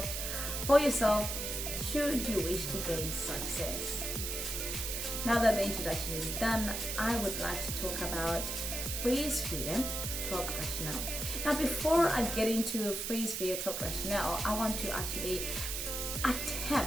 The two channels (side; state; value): right; noise; hiss, 3 dB below the sound